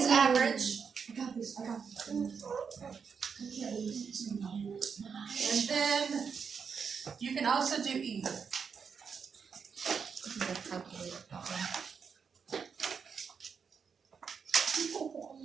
average. I got this. And then you can also do E. This is a calculator problem.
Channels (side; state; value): left; quieter; 6.2 dB